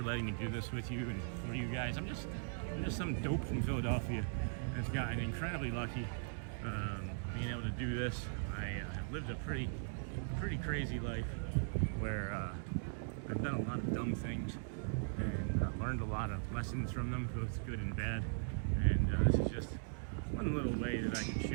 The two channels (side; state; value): left; silent; digital silence